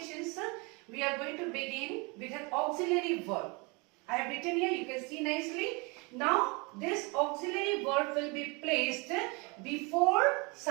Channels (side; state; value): left; quieter; 29.2 dB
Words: we are going to begin with an auxiliary verb. I have written here, you can see nicely. Now this auxiliary verb will be placed before